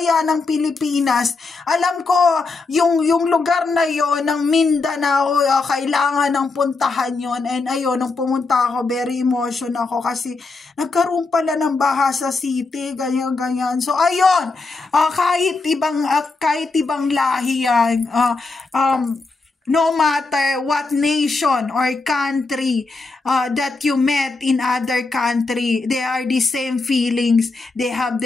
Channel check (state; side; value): quieter; right; 3.8 dB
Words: ng Pilipinas. Alam ko, yung lugar na yon ng Mindanao, kailangan ng puntahan yon. And ayun, nung pumunta ako, very emotional ako kasi nagkaroon pala ng baha sa city, ganyan. So ayun, kahit ibang lahi yan, no matter what nation or country that you met in other country, they are the same feelings. They have